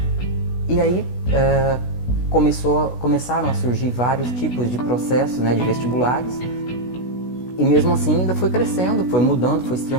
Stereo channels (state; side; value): late; right; 16 ms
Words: E aí começaram a surgir vários tipos de processos, de vestibulares, e mesmo assim ainda foi crescendo, foi mudando, foi se